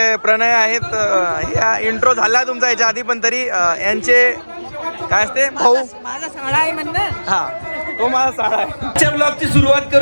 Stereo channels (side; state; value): both; inverted; correlation -1.00